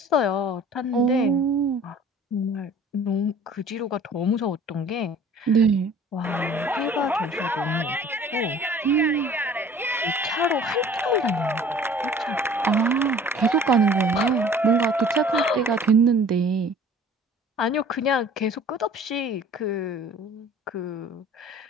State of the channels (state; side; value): normal; both; correlation 0.49